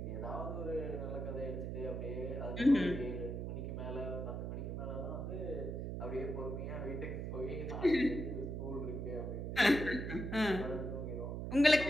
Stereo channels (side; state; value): right; noise; hum, 4 dB below the sound